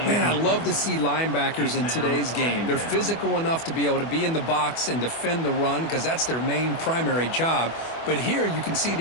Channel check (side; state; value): right; late; 24 ms